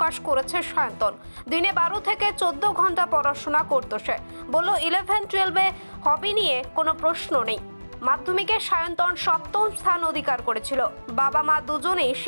করেছে সায়ন্তন। দিনে 12 থেকে 14 ঘন্টা পড়াশোনা করতো সে। বলল 11-12-এ হবি নিয়ে কোনো প্রশ্ন নেই। মাধ্যমিকে সায়ন্তন 7ম স্থান অধিকার করেছিল। বাবা মা দুজনেই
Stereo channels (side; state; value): both; inverted; correlation -1.00